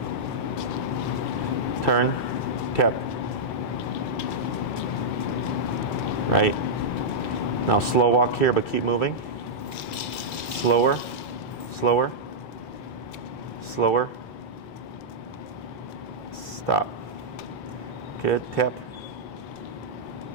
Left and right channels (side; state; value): both; normal; correlation -0.09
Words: Turn, tap. Right. Now slow walk here, but keep moving. Slower, slower, slower. Stop. Good, tap.